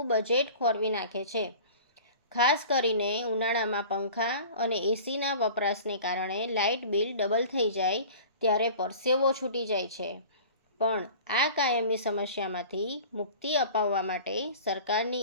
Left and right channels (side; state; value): both; inverted; correlation -0.41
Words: બજેટ ખોરવી નાખે છે। ખાસ કરીને ઉનાળામાં પંખા અને એસીના વપરાશને કારણે લાઇટ બિલ ડબલ થઈ જાય ત્યારે પરસેવો છૂટી જાય છે। પણ આ કાયમી સમસ્યામાંથી મુક્તિ અપાવવા માટે